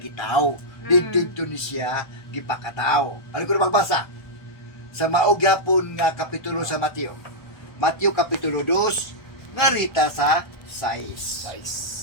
Didto ni siya gipakataw. Ano ko na magbasa? Sa maog yapon nga kapitulo sa Mateo. Mateo Kapitulo 2 nga rita sa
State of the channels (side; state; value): right; late; 1.2 ms